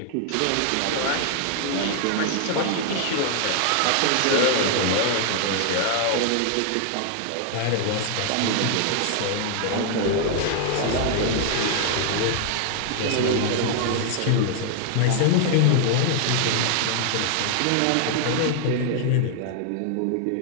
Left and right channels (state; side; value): different; both; correlation 0.00